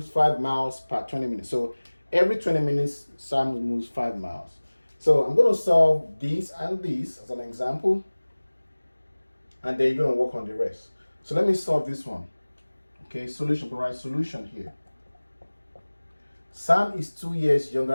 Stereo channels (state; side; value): inverted; both; correlation -1.00